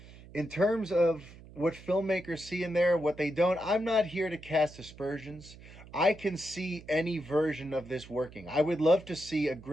in terms of what filmmakers see in there, what they don't, I'm not here to cast aspersions. I can see any version of this working. I would love to see a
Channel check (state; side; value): noise; right; hum, 19 dB below the sound